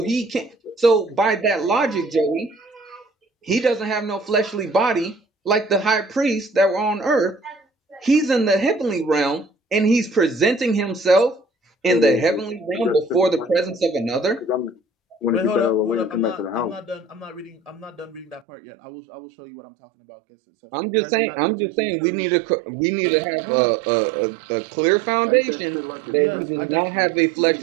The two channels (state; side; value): drops out; left; at 18.4 s